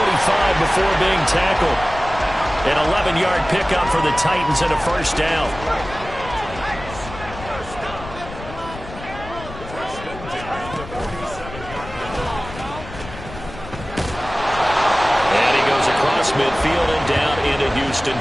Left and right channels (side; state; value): left; noise; rumble, 13 dB below the sound